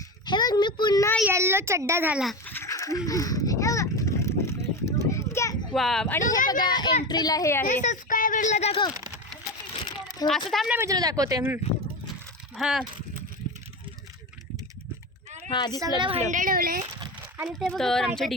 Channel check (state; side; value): normal; both; correlation 0.22